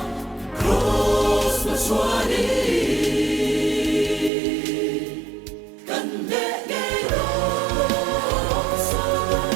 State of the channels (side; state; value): left; drops out; at 4.3 s